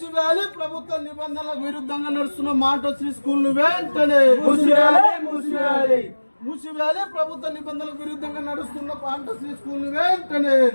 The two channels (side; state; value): both; inverted; correlation -1.00